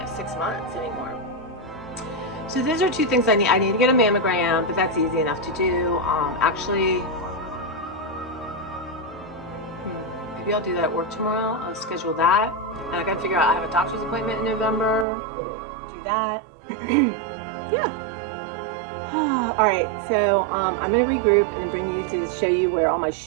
6 months anymore. So those are two things I need. I need to get a mammogram, but that's easy enough to do. Actually, maybe I'll do that at work tomorrow. I'll schedule that. And I gotta figure out, I have a doctor's appointment in November. Do that. Yeah. All right, so I'm gonna regroup and then bring you to show you where all my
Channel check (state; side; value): drops out; left; at 15.1 s